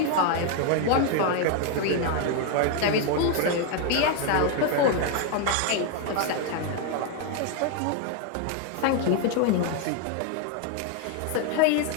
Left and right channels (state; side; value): different; both; correlation 0.01